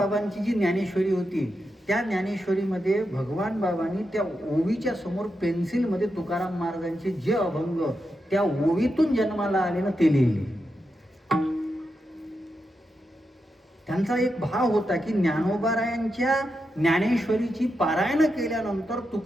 जी ज्ञानेश्वरी होती, त्या ज्ञानेश्वरीमध्ये भगवान बाबांनी त्या ओवीच्या समोर पेन्सिलमध्ये तुकाराम महाराजांचे जे अभंग त्या ओवीतून जन्माला आले ना, ते लिहिले. त्यांचा एक भाव होता की ज्ञानोबारायांच्या ज्ञानेश्वरीची पारायण केल्यानंतर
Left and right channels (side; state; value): both; normal; correlation 0.87